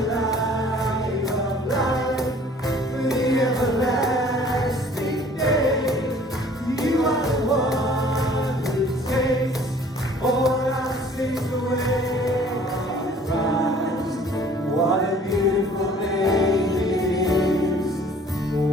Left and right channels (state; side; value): normal; both; correlation 0.53